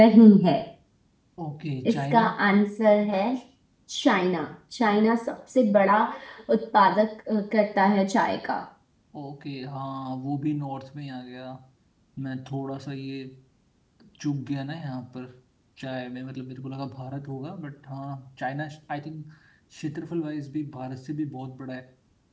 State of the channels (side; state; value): both; identical; correlation 1.00